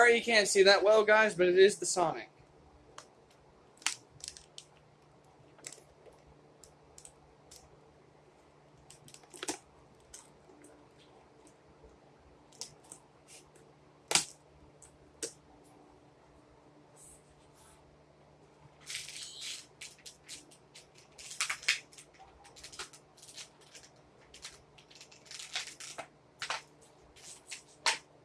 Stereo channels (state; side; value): identical; both; correlation 1.00